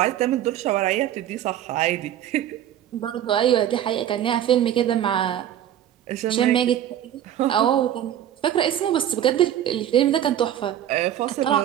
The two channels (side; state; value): left; quieter; 11.1 dB